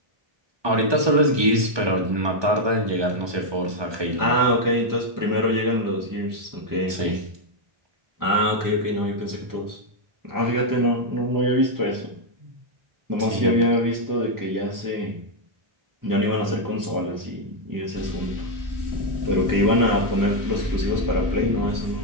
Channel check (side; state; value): left; late; 1.2 ms